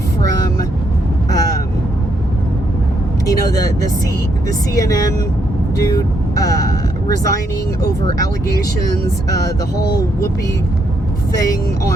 from, the CNN dude, resigning over allegations, the whole Whoopi thing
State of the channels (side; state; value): both; normal; correlation 0.76